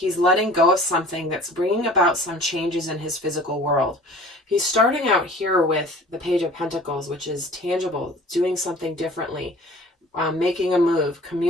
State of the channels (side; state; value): both; normal; correlation 0.46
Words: letting go of something that's bringing about some changes in his physical world. He's starting out here with the Page of Pentacles, which is tangible, doing something differently, making a move,